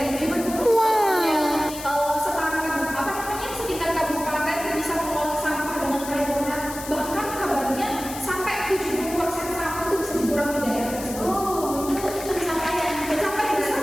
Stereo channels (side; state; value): left; noise; hiss, 11 dB below the sound